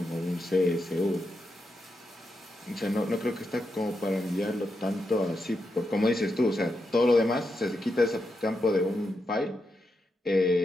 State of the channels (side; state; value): both; normal; correlation 0.85